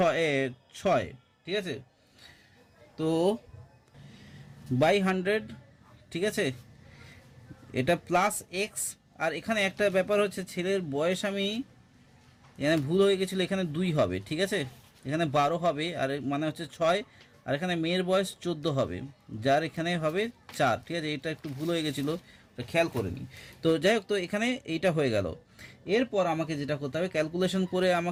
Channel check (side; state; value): both; identical; correlation 1.00